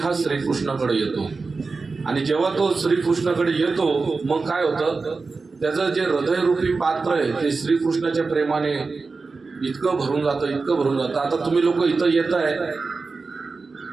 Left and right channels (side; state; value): left; quieter; 4.2 dB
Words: श्रीकृष्णाकडे येतो. आणि जेव्हा तो श्रीकृष्णाकडे येतो मग काय होतं, त्याचं जे हृदयरूपी पात्र आहे ते श्रीकृष्णाच्या प्रेमाने इतकं भरून जातं, इतकं भरून जातं. आता तुम्ही लोक इथं येत आहे,